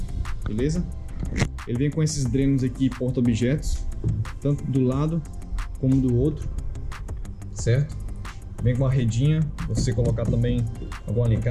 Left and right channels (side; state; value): both; identical; correlation 1.00